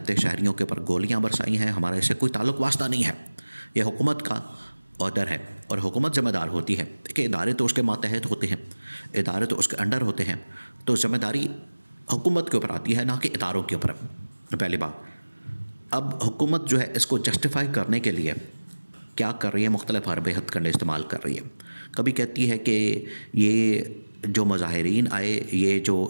شہریوں کے اوپر گولیاں برسائی ہیں، ہمارا اس سے کوئی تعلق واسطہ نہیں ہے، یہ حکومت کا آرڈر ہے، اور حکومت ذمہ دار ہوتی ہے کہ ادارے تو اس کے ماتحت ہوتے ہیں، ادارے تو اس کے انڈر ہوتے ہیں، تو ذمہ داری حکومت کے اوپر آتی ہے، نہ کہ اداروں کے اوپر، پہلی بات۔ اب حکومت جو ہے اس کو جسٹیفائی کرنے کے لیے کیا کر رہی ہے؟ مختلف حرب ہتھ کنڈے استعمال کر رہی ہے۔ کبھی کہتی ہے کہ یہ جو مظاہرین آئے، یہ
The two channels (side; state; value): both; inverted; correlation -1.00